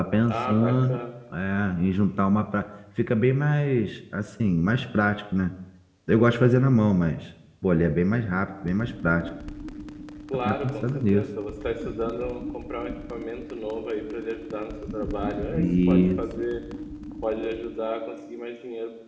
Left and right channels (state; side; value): identical; both; correlation 1.00